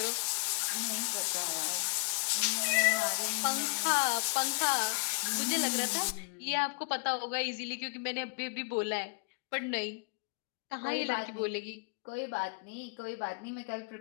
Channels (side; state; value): right; quieter; 37.6 dB